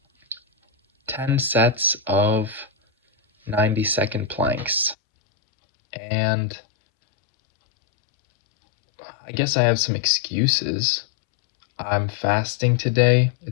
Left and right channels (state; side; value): drops out; right; at 5.0 s